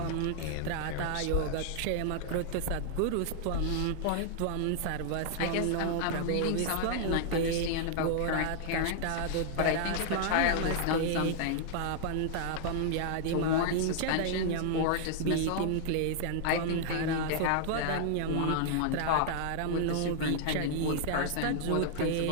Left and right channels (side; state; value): both; different; correlation -0.01